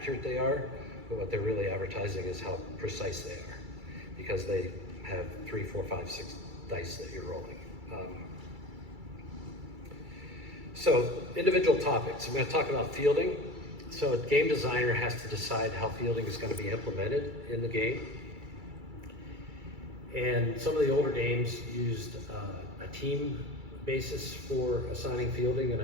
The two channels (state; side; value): late; left; 2.3 ms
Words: they are, but what they're really advertising is how precise they are, because they have 3, 4, 5, 6 dice that you're rolling. So individual topics. I'm going to talk about fielding. So a game designer has to decide how fielding is going to be implemented in the game. And some of the older games used a team basis for assigning fielding, and